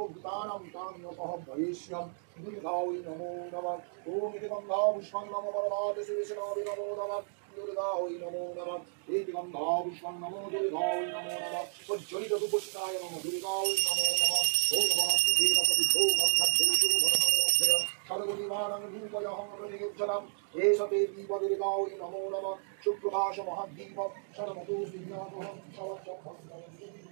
काम्योपः भविष्यं दुर्गाय नमो नमः ओम इति गन्धारुष्वं नमो परमात्मशेषनाय नमो नमः दुर्गाय नमो नमः एक गंधापुष्पं नमो दुर्गाय नमो नमः सज्जनित दुपुष्टाय नमो दुर्गाय नमो नमः ओम नमः देवपति भो मन्नद्धेषु भवनोभय सर्वनिवारणं रूपयहं प्रतिगच्छनम् एष ते दीप दुर्गाय नमो नमः शुक्रभाष महद्दीप शर्मतो विज्ञानोहं शवचम्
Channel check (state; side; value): silent; left; digital silence